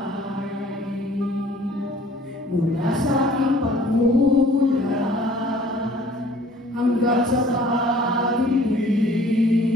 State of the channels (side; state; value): both; normal; correlation 0.54